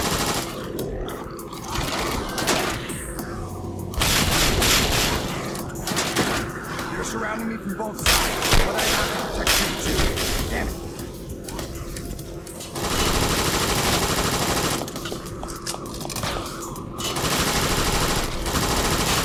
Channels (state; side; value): identical; both; correlation 1.00